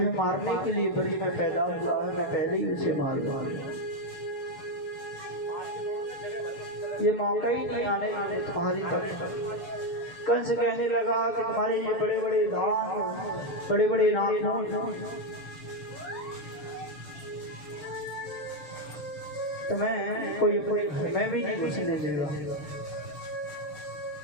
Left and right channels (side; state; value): right; late; 6.8 ms